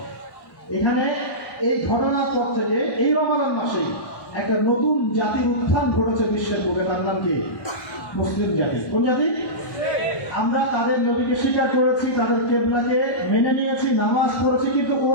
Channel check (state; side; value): late; right; 1.1 ms